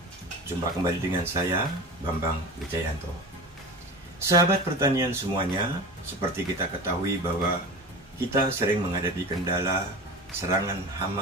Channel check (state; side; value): normal; both; correlation 0.32